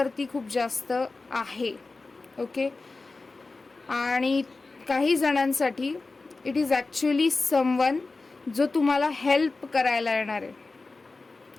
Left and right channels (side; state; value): right; quieter; 3.6 dB